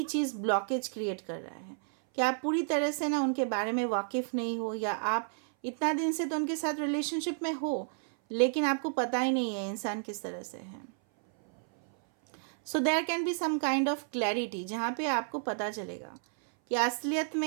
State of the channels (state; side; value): silent; left; 57 dB below the other